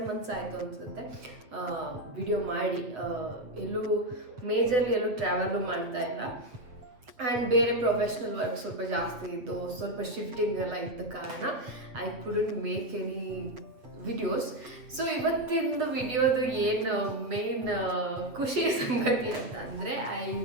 ಮಂತ್ಸ್ ಆಯಿತು ಅನಿಸುತ್ತೆ ವಿಡಿಯೋ ಮಾಡಿ. ಎಲ್ಲೂ ಟ್ರಾವೆಲು ಮಾಡ್ತಾ ಇಲ್ಲ. ಆ್ಯಂಡ್ ಬೇರೆ ಪ್ರೊಫೆಷ್ನಲ್ ವರ್ಕ್ ಸ್ವಲ್ಪ ಜಾಸ್ತಿ ಇತ್ತು, ಸ್ವಲ್ಪ ಶಿಫ್ಟಿಂಗ್ ಎಲ್ಲ ಇದ್ದ ಕಾರಣ I couldn't make any videos. So ಇವತ್ತಿನ ವಿಡಿಯೋದು ಏನು ಮೇನ್ ಖುಷಿ ಸಂಗತಿ ಅಂತ ಅಂದರೆ I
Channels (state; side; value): late; left; 7.9 ms